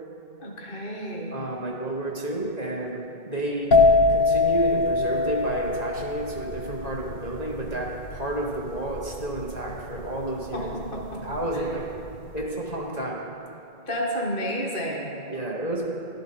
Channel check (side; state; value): right; late; 1.9 ms